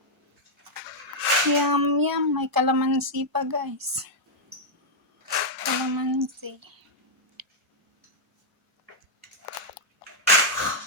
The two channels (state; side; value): normal; both; correlation -0.05